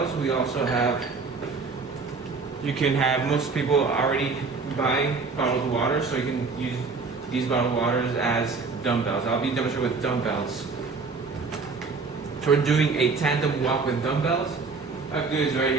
we also have, you can have, most people already buy bottled water, so you can use these bottled waters as dumbbells. I'll be demonstrating with dumbbells. So we're doing a tandem walk with dumbbells. All I have to do is right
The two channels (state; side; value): quieter; left; 4.4 dB